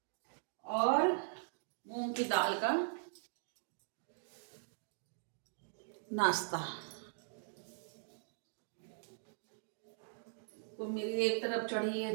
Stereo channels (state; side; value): silent; left; digital silence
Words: और मूंग की दाल का नाश्ता। तो मेरी एक तरफ चढ़ी